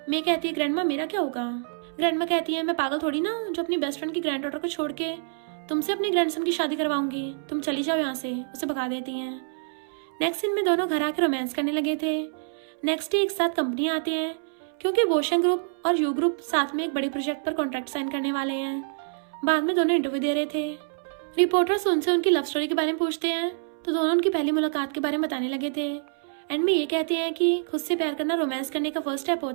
मैं कहती है ग्रैंडमा मेरा क्या होगा? ग्रैंडमा कहती है मैं पागल थोड़ी ना जो अपनी बेस्ट फ्रेंड की ग्रैंड डॉटर को छोड़ के तुमसे अपने ग्रैंडसन की शादी करवाऊंगी, तुम चली जाओ यहाँ से। उसे भगा देती हैं। नेक्स्ट सीन में दोनों घर आकर रोमांस करने लगे थे। नेक्स्ट डे एक साथ कंपनी आते हैं क्योंकि वोशन ग्रुप और यू ग्रुप साथ में एक बड़ी प्रोजेक्ट पर कॉन्ट्रैक्ट साइन करने वाले हैं। बाद में दोनों इंटरव्यू दे रहे थे। रिपोर्टर्स उनसे उनकी लव स्टोरी के बारे में पूछते हैं तो दोनों उनकी पहली मुलाकात के बारे में बताने लगे थे। एंड में ये कहते हैं कि खुद से प्यार करना रोमांस करने का फर्स्ट स्टेप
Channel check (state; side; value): silent; left; 60 dB below the other